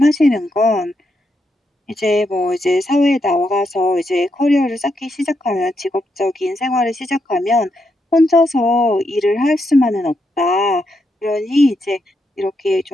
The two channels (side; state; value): both; normal; correlation 0.81